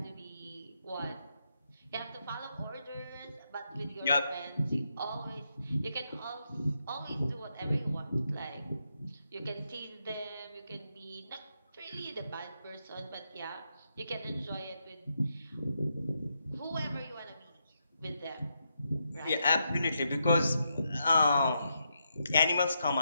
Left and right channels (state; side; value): inverted; both; correlation -0.82